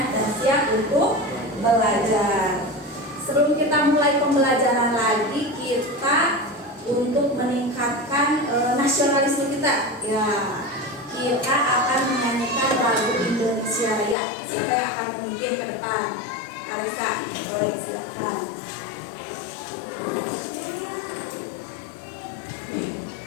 dan siap untuk belajar. Sebelum kita mulai pembelajaran lagi, kita untuk meningkatkan nasionalisme kita, ya kita akan menyanyikan lagu Indonesia Raya. Siapa yang akan memimpin ke depan? Arisa, boleh silakan.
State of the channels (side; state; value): right; drops out; at 14.2 s